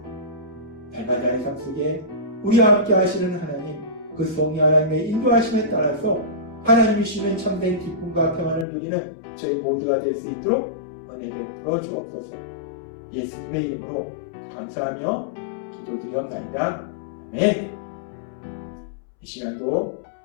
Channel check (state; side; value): drops out; right; at 8.7 s